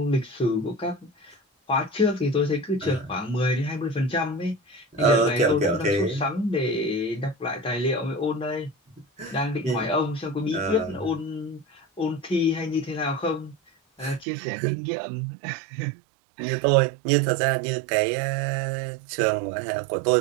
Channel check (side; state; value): left; drops out; at 14.2 s